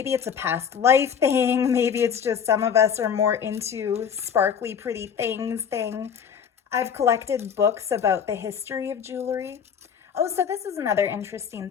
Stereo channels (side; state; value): right; quieter; 7.5 dB